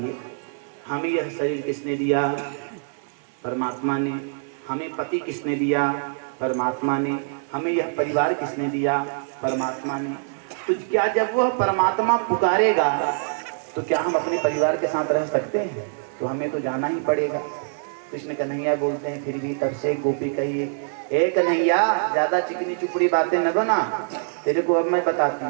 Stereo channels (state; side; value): silent; left; digital silence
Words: हमें यह शरीर किसने दिया? परमात्मा ने। हमें पति किसने दिया? परमात्मा ने। हमें यह परिवार किसने दिया? परमात्मा ने। तो क्या जब वह परमात्मा पुकारेगा तो क्या हम अपने परिवार के साथ रह सकते हैं? तो हमें तो जाना ही पड़ेगा। कृष्ण कन्हैया बोलते हैं फिर भी तब से गोपी कही, ए कन्हैया ज्यादा चिकनी चुपड़ी बातें न बना, तेरे को अब मैं बताती